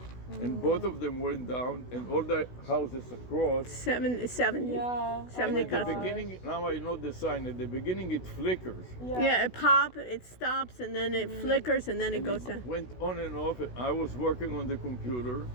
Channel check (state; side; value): late; right; 16 ms